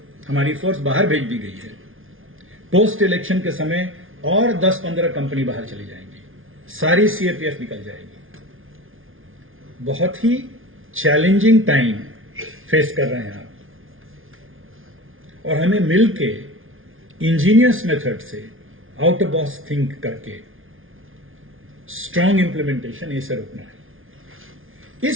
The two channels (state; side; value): late; left; 0.59 ms